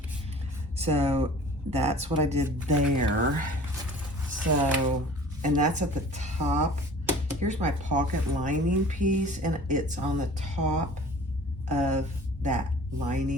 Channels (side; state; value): both; normal; correlation 0.45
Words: So that's what I did there. So, and that's at the top. Here's my pocket lining piece, and it's on the top of that